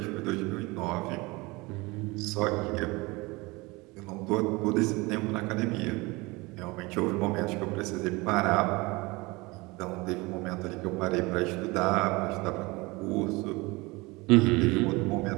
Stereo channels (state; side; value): quieter; left; 23.9 dB